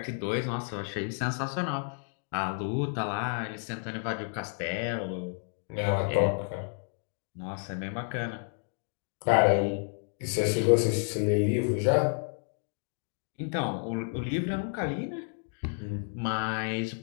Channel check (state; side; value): silent; right; 57 dB below the other